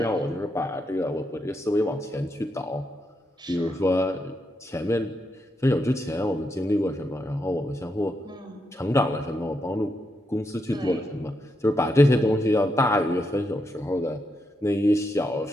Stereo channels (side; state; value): both; normal; correlation 0.82